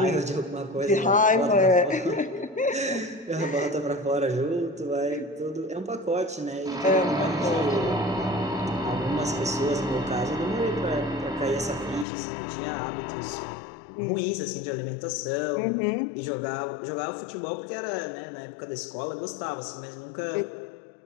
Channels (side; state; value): right; drops out; at 12.1 s